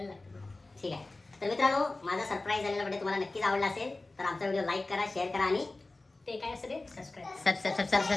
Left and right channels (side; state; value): right; quieter; 3.1 dB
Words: लागतं. ठीक आहे. तर मित्रांनो माझा सरप्राईज झालेला व्हिडिओ तुम्हाला नक्कीच आवडला असेल तर आमचा व्हिडिओ लाईक करा शेअर करा आणि ते काय असतं रे? सबस्क्राईब.